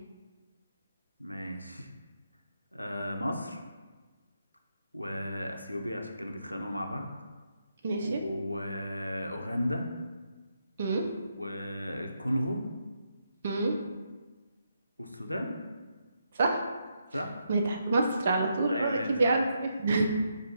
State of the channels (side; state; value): both; inverted; correlation -0.81